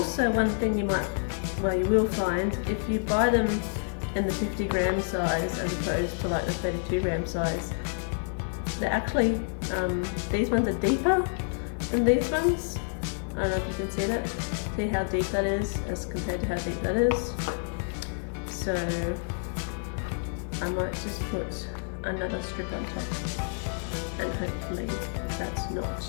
one thing you will find, if you buy them in the 50 gram size as opposed to like the 32 gram size, they're actually, these ones are deeper than these ones. I don't know if you can see that. See how deep that is as compared to how deep that is. So I might just put another strip on top, and hopefully that's not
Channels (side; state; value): right; silent; digital silence